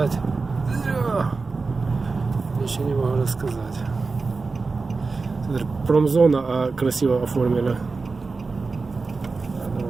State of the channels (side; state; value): left; quieter; 4.1 dB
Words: Ничего не могу рассказать. Смотри, промзона, а красиво оформили.